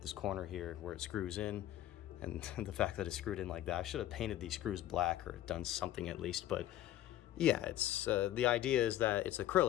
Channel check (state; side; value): quieter; right; 13.2 dB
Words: this corner here where it screws in. And the fact that it's screwed in like that, I should have painted these screws black or done something at least. But yeah, it's the idea is that it's